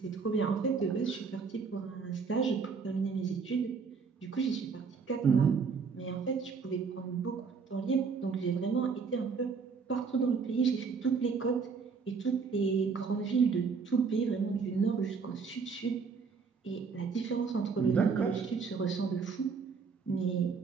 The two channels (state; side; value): quieter; left; 5.3 dB